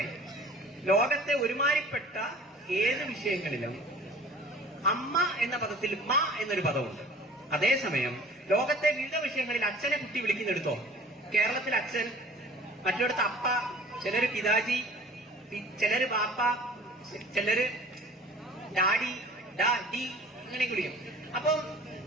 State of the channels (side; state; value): both; normal; correlation 0.48